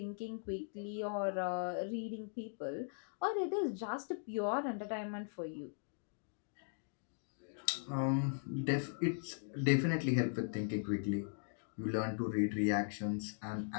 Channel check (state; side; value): silent; right; digital silence